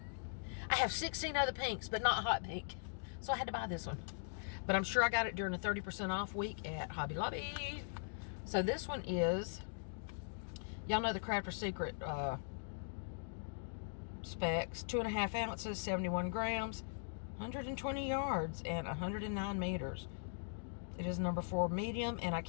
I have 16 other pinks, but not hot pink. So I had to buy this one. But I'm sure I got it during a 30% off week at Hobby Lobby. So this one is, y'all know the Crafter's Secret specs. 2.5 ounces, 71 grams, 120 yards, and 109 meters. It is number 4 medium, and I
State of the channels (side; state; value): right; silent; digital silence